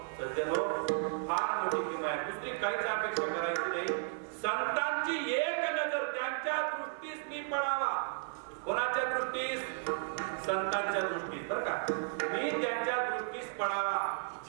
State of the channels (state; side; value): silent; left; 55 dB below the other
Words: सज्जन फार मोठी किंमत आहे. दुसरी काहीच अपेक्षा करायची नाही. संतांची एक नजर त्यांच्या दृष्टीस मी पडावा. कोणाच्या दृष्टीस? संतांच्या दृष्टीस बरं का. मी त्यांच्या दृष्टीस पडावा.